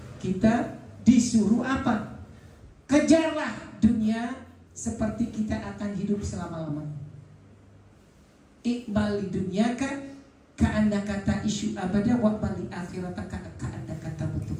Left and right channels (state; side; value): identical; both; correlation 1.00